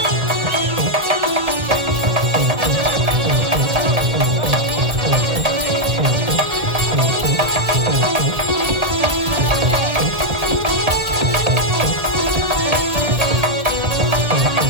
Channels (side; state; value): left; late; 1.8 ms